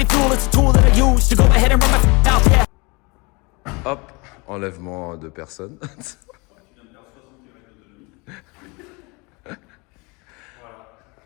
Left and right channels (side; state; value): right; quieter; 27.7 dB